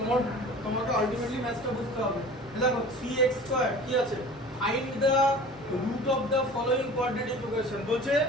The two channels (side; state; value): both; normal; correlation 0.41